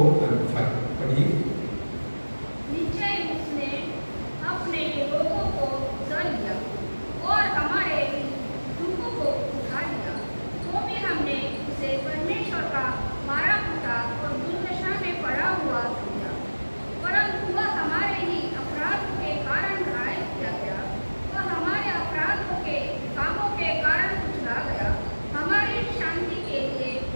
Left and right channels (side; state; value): both; inverted; correlation -1.00